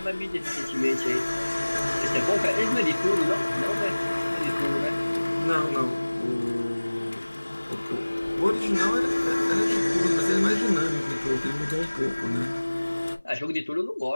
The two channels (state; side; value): inverted; both; correlation -1.00